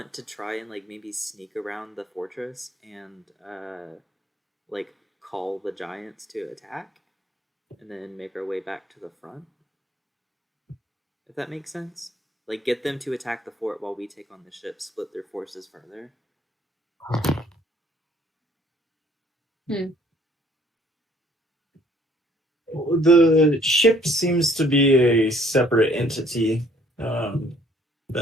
to try and like maybe sneak around the fortress and like call the giants to attack and then make our way back to the front? If that makes sense. Like get them to attack the fort while we take on the ship, split their forces further. The ship seems to be a separate entity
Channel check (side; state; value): both; normal; correlation 0.60